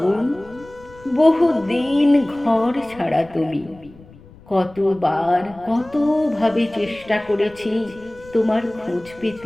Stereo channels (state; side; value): noise; left; rumble, 23 dB below the sound